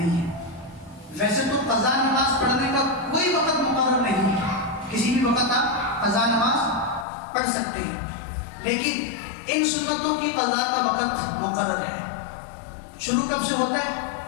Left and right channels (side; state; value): right; drops out; at 7.1 s